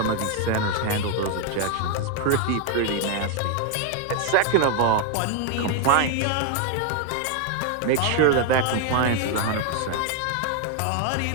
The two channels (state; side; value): different; both; correlation 0.01